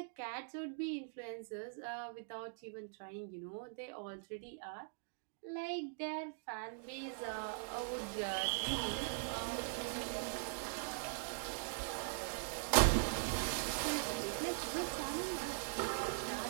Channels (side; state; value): left; silent; digital silence